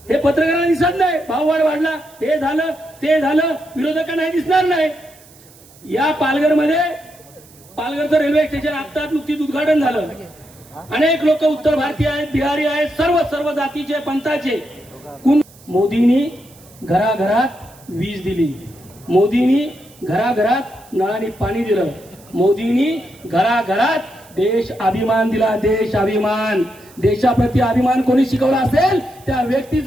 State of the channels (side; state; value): right; noise; hiss, 25 dB below the sound